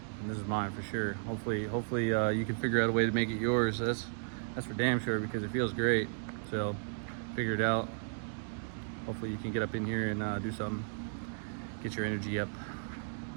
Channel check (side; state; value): left; silent; digital silence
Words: and this is mine for sure. Hopefully you can figure out a way to make it yours. That's for damn sure, because it feels great. So figure it out. Hopefully you can get up in here and do something, get your energy up.